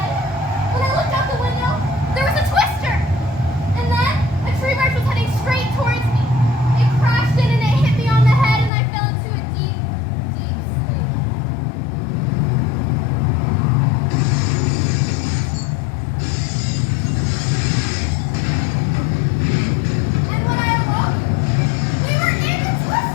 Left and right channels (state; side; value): drops out; right; at 8.7 s